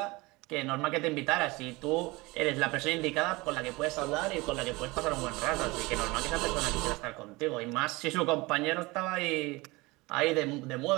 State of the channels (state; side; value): quieter; left; 23.0 dB